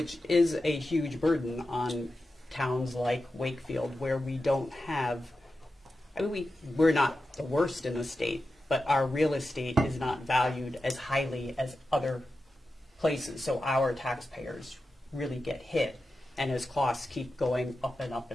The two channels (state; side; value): normal; both; correlation 0.91